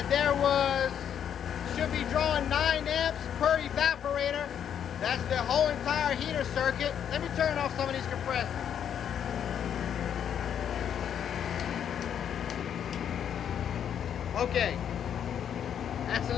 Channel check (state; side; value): quieter; right; 8.9 dB